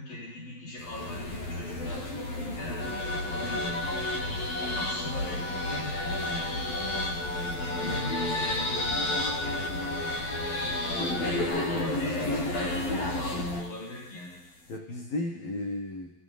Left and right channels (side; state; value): right; late; 12 ms